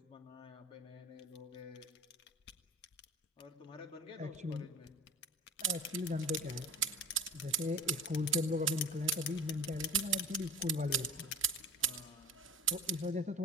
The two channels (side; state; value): both; normal; correlation 0.36